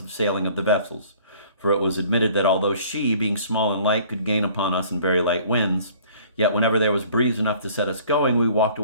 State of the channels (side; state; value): both; inverted; correlation -0.53